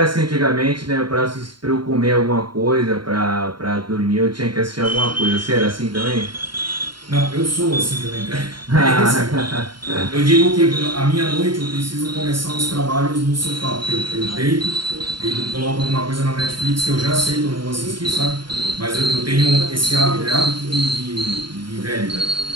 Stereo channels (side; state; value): left; late; 0.72 ms